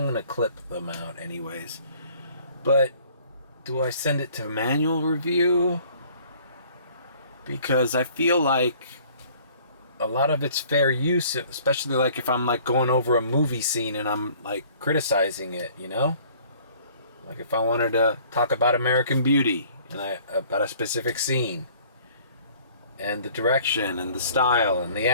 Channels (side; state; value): both; inverted; correlation -0.54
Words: to clip them out anyways. But do I send it to manual review? Because I feel like a lot of it's fair use, especially like if I'm like going over a movie scene and I'm like criticizing it, Like if I wanted to talk about American Beauty and about a specific scene and the direction and the style and the